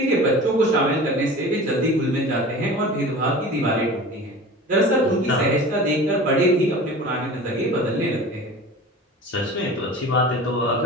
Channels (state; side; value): normal; both; correlation 0.38